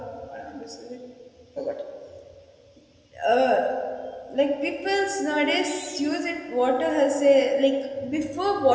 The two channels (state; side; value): identical; both; correlation 1.00